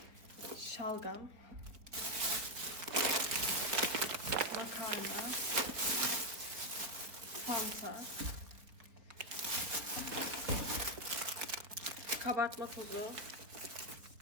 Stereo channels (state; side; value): late; left; 4.0 ms